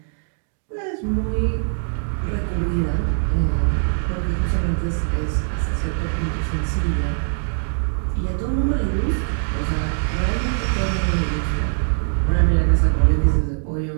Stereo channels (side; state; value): left; silent; digital silence